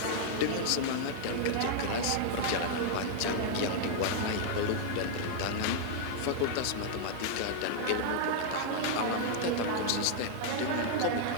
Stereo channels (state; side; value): different; both; correlation -0.01